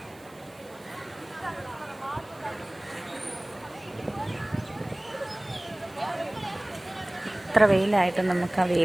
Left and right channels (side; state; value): right; noise; hiss, 26 dB below the sound